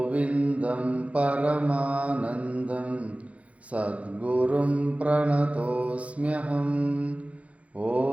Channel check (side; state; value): left; late; 0.065 ms